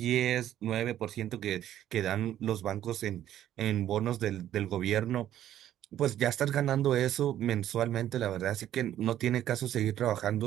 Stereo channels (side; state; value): left; quieter; 11.9 dB